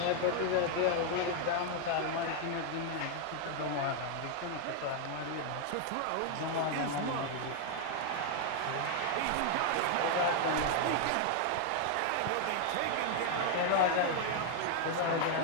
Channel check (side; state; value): both; different; correlation 0.00